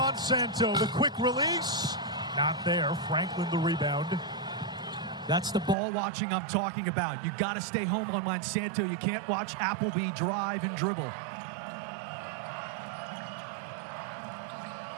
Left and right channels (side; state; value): left; drops out; at 5.8 s